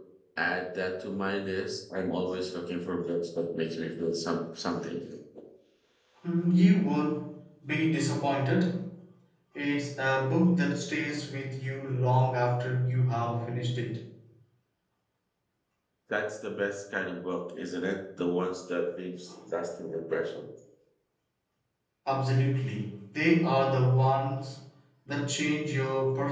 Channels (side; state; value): both; identical; correlation 1.00